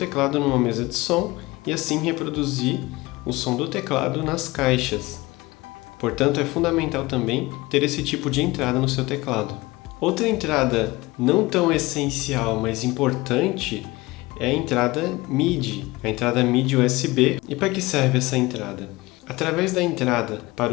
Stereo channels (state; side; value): quieter; right; 21.1 dB